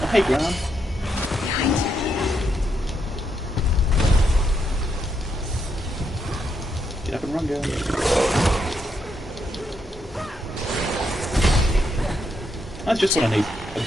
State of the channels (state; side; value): normal; both; correlation 0.79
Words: Oh, hey, Graham. Get up and run, girl. That's just what I need. A